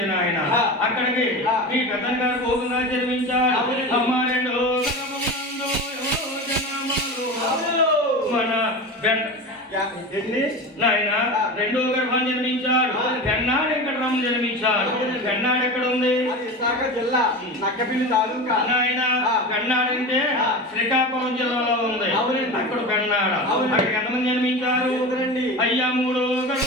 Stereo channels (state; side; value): normal; both; correlation 0.28